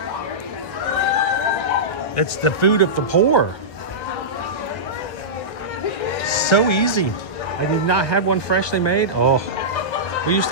It's the food of the poor. So easy. I did not have one freshly made. Oh, we used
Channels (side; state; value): right; late; 1.5 ms